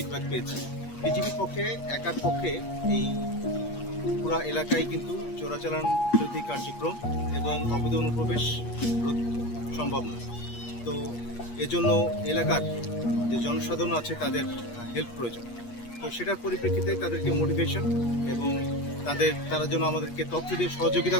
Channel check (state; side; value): late; right; 8.4 ms